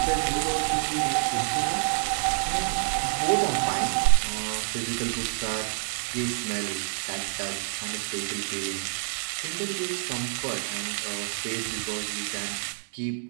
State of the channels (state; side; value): silent; left; 60 dB below the other